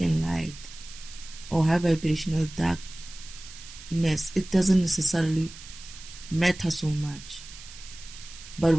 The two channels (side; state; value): right; noise; hiss, 16 dB below the sound